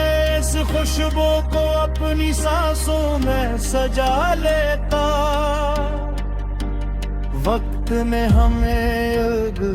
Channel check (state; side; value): identical; both; correlation 1.00